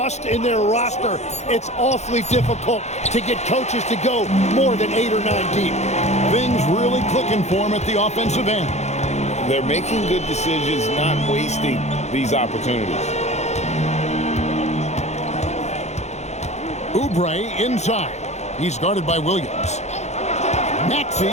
in their roster. It's awfully difficult to get coaches to go more than 8 or 9 deep. Things really clicking for them at the offensive end. They're making good decisions, not wasting these opportunities. Oubre inside. He's guarded by Williams. Maxey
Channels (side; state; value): right; late; 0.33 ms